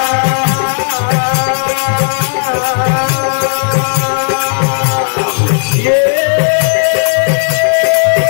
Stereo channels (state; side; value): silent; right; digital silence